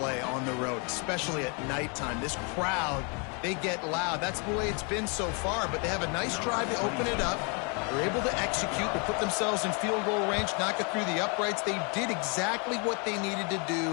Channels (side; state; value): right; quieter; 35.0 dB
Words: on the road, especially at nighttime. This crowd, they get loud. That's the way it's been so far, but they have a nice drive to open it up. They're able to execute, to put themselves in field goal range, knock it through the uprights. They did exactly what they needed to